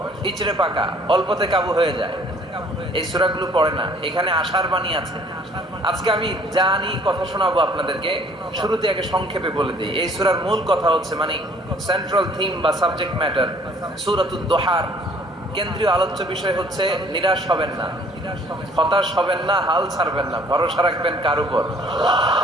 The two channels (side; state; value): both; normal; correlation 0.57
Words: ইচড়ে পাকা, অল্পতে কাবু হয়ে যায়। এই সূরাগুলো পড়ে না। এখানে আশার বাণী আছে। আজকে আমি জানি কথা শোনাবো আপনাদেরকে, শুরুতে আগে সংক্ষেপে বলে দিই। এই সূরার মূল কথা হচ্ছে, মানে সেন্ট্রাল থিম বা সাবজেক্ট ম্যাটার, সূরাতুদ দুহার কেন্দ্রীয় আলোচ্য বিষয় হচ্ছে নিরাশ হবেন না, হতাশ হবেন না, হাল ছাড়বেন না, ভরসা রাখবেন কার উপর?